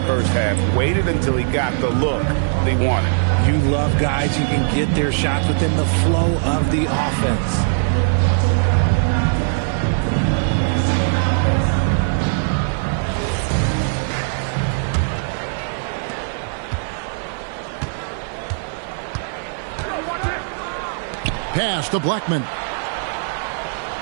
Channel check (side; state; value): left; silent; 56 dB below the other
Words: first half. Waited until he got the look they wanted. You love guys who can get their shots within the flow of the offense. Pass to Blackman.